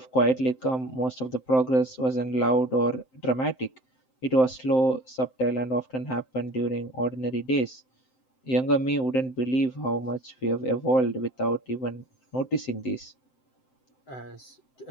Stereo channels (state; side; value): late; right; 7.7 ms